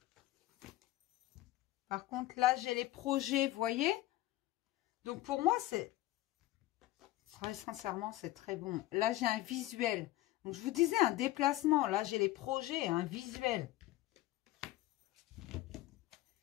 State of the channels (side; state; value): right; quieter; 16.5 dB